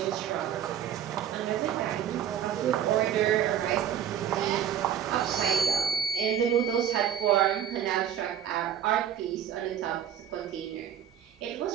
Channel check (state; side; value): quieter; left; 9.4 dB